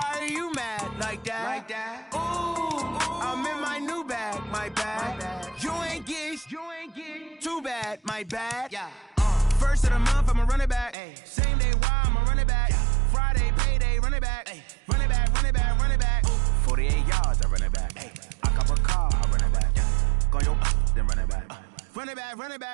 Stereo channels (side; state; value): left; drops out; at 11.0 s